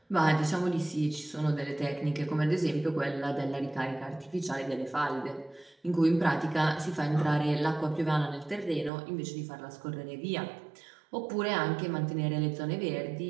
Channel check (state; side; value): drops out; left; at 8.9 s